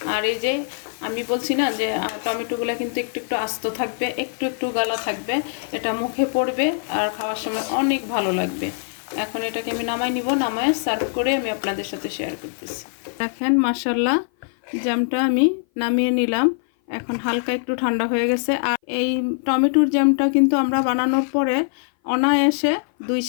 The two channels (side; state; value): right; silent; 57 dB below the other